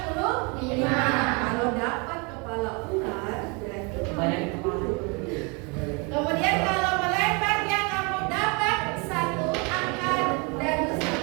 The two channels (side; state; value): left; quieter; 30.8 dB